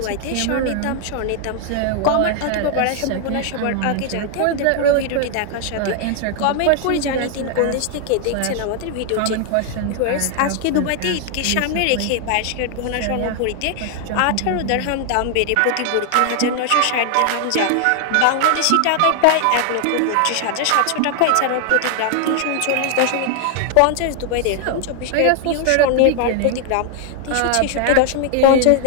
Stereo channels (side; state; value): both; different; correlation 0.00